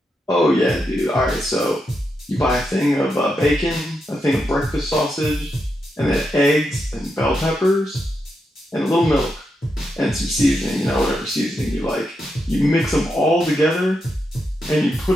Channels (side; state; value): both; normal; correlation 0.84